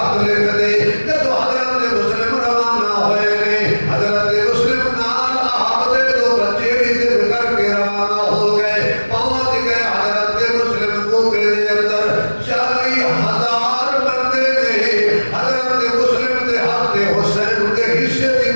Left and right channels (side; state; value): both; inverted; correlation -1.00